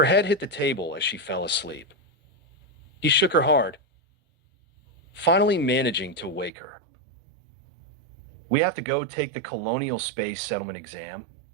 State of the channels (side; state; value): left; drops out; at 6.5 s